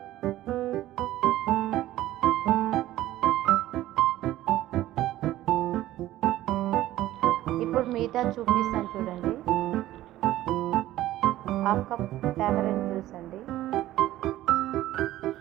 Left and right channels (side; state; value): left; quieter; 14.8 dB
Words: ఇప్పుడు మీఠా చూపిస్తాను చూడండి. 1/2 కప్ టామరిన్ జ్యూస్ అండి.